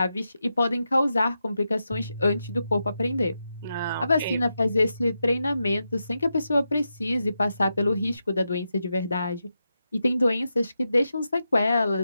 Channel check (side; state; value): both; inverted; correlation -0.87